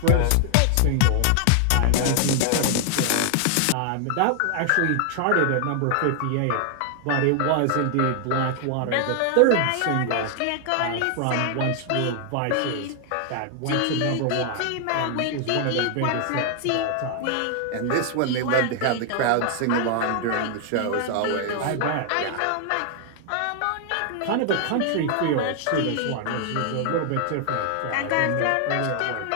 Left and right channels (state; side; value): different; both; correlation 0.00